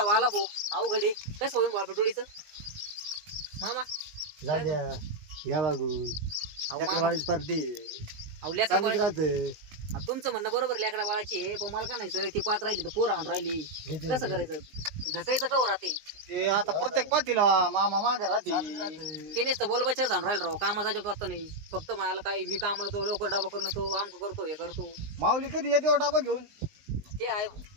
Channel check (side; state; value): left; late; 19 ms